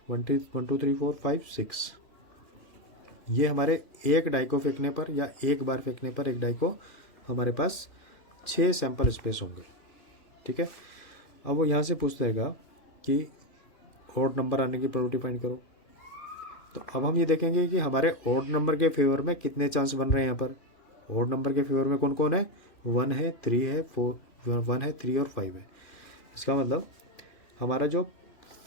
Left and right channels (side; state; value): right; late; 2.4 ms